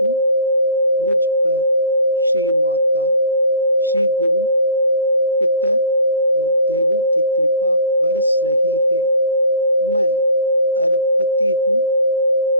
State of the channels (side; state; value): both; inverted; correlation -0.45